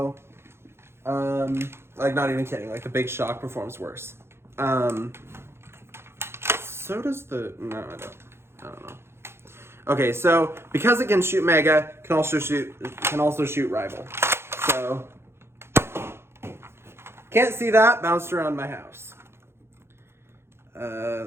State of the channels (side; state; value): left; late; 0.12 ms